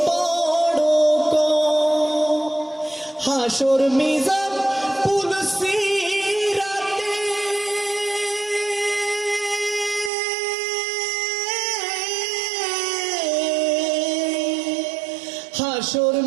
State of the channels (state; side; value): drops out; left; at 10.1 s